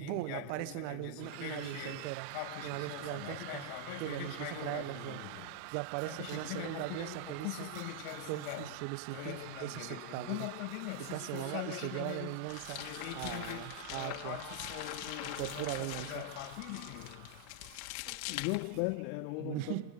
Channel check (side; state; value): both; different; correlation -0.01